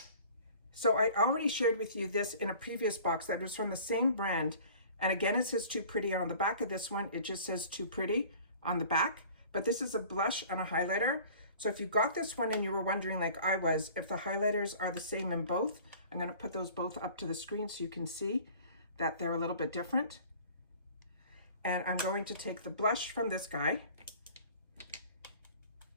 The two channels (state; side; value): inverted; both; correlation -0.47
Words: so I already shared with you this in a previous box that was from the same brand. And again, it says Too Pretty on the back of this one. It just says Too Pretty on the back, but this is a blush and a highlighter. So if you got this one and you were wondering, like I was, if the highlighters are the same in both, I'm going to put those both up to the screen so you can see that they're a little bit different. And I'm going to take the blush from this guy.